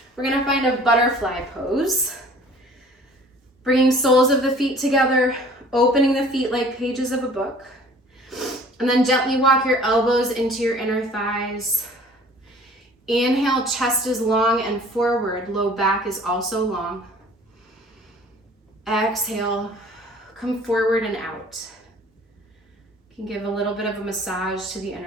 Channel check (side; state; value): both; normal; correlation 0.50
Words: We're gonna find a butterfly pose. Bringing soles of the feet together, opening the feet like pages of a book. And then gently walk your elbows into your inner thighs. Inhale, chest is long and forward, low back is also long. Exhale, come forward and out. You can give a little bit of a massage to the